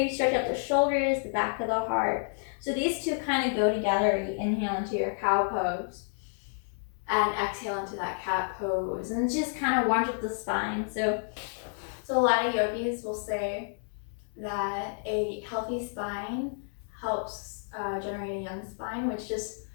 stretch out the shoulders, the back of the heart. So these 2 kind of go together. You inhale into your cow pose and exhale into that cat pose. And just kind of warms up the spine. So a lot of yogis will say that a healthy spine helps generate a young spine, which just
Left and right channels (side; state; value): right; silent; 58 dB below the other